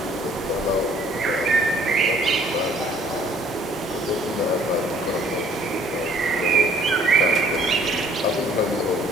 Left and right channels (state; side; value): normal; both; correlation 0.58